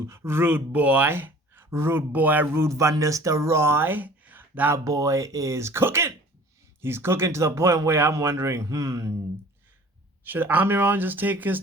Ruud Boy, Ruud Van Nistelrooy. That boy is cooking. He's cooking to the point where I'm wondering, should Amiron just take his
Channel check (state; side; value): normal; both; correlation 0.47